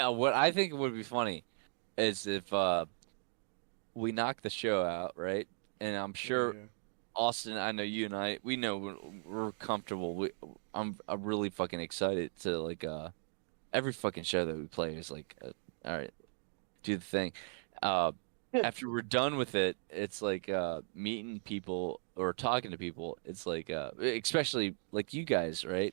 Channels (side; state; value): left; silent; 53 dB below the other